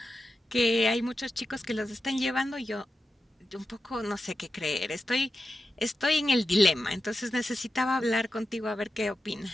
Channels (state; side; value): normal; both; correlation 0.90